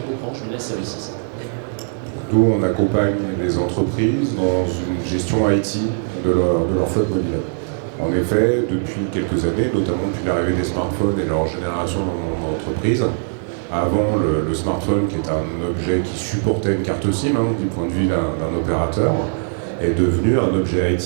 Orange Business Services? Nous, on accompagne les entreprises dans une gestion IT de leur flotte mobile. En effet, depuis quelques années, notamment depuis l'arrivée des smartphones et leur génération dans l'entreprise, avant le smartphone, qui est un objet qui supportait une carte SIM, du point de vue d'un opérateur, est devenu un objet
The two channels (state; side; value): silent; left; digital silence